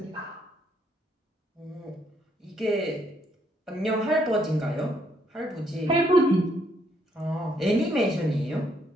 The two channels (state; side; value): normal; both; correlation 0.71